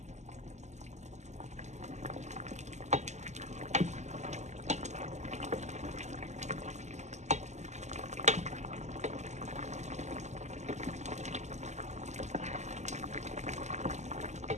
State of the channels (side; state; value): left; late; 0.33 ms